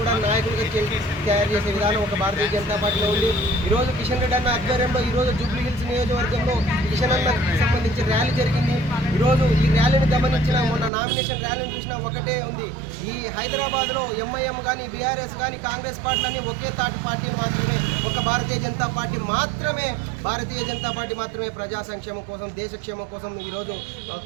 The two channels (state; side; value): drops out; left; at 10.9 s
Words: నాయకులుగా తయారు చేసే విధానం ఒక భారతీయ జనతా పార్టీలో ఉంది. ఈరోజు కిషన్ రెడ్డి అన్న ఆధ్వర్యంలో ఈరోజు జూబ్లీ హిల్స్ నియోజకవర్గంలో కిషన్ అన్నకు సంబంధించి ర్యాలీ జరిగింది. ఈరోజు ఈ ర్యాలీని గమనించిన మొన్న నామినేషన్ ర్యాలీని చూసినా ఒకటే ఉంది, ఈ హైదరాబాద్లో ఎంఐఎం కానీ బీఆర్ఎస్ కానీ కాంగ్రెస్ పార్టీలన్నీ ఒకే తాటి పార్టీ మాత్రమే, ఒక భారతీయ జనతా పార్టీ మాత్రమే ప్రజా సంక్షేమం కోసం దేశక్షేమం కోసం ఈరోజు